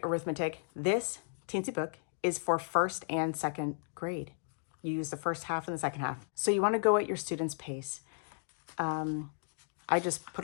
Arithmetic. This teensy book is for 1st and 2nd grade. You use the first half and the second half. So you want to go at your student's pace. I just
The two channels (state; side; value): silent; right; digital silence